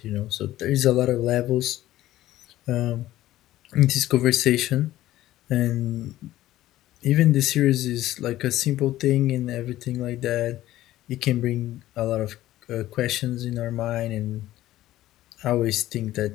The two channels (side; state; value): right; quieter; 14.8 dB